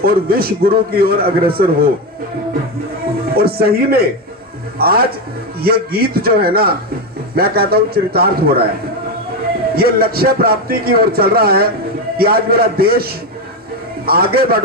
और विश्व गुरु की ओर अग्रसर हो। और सही में आज ये गीत जो है ना, मैं कहता हूँ चरितार्थ हो रहा है, ये लक्ष्य प्राप्ति की ओर चल रहा है कि आज मेरा देश आगे बढ़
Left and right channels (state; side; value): normal; both; correlation 0.12